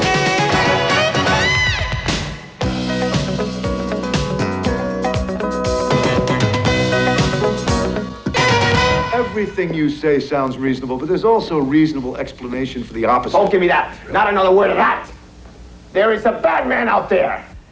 Everything you say sounds reasonable, but there's also a reasonable explanation for the opposite. Don't give me that. Not another word of that. There is a bad man out there.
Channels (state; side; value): identical; both; correlation 1.00